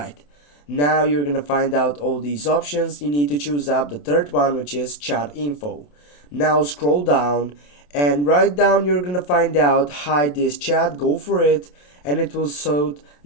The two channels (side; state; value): right; late; 27 ms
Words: Now you're gonna find out all these options. You need to choose up the third one, which is chat info. Now scroll down, and right down you're gonna find out hide this chat. Go for it, and it will show